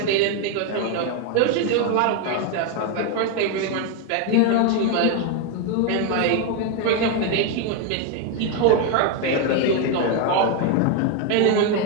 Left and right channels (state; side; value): different; both; correlation 0.01